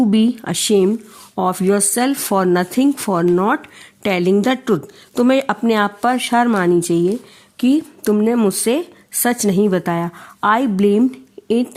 be ashamed of yourself for nothing, for not telling the truth. तुम्हें अपने आप पर शर्म आनी चाहिए कि तुमने मुझसे सच नहीं बताया. I blamed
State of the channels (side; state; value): both; identical; correlation 1.00